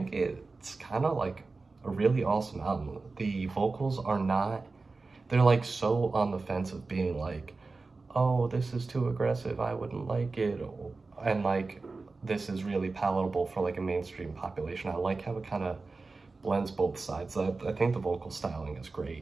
it's kind of a really awesome album. The vocals are not, they're so on the fence of being oh, this is too aggressive, I wouldn't like it, and this is really palatable for a mainstream population. I like how it kind of blends both sides. I think the vocal styling is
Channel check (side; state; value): left; quieter; 3.8 dB